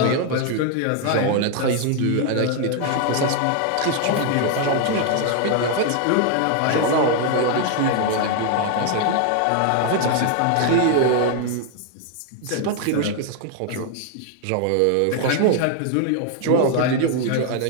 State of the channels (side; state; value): both; different; correlation 0.00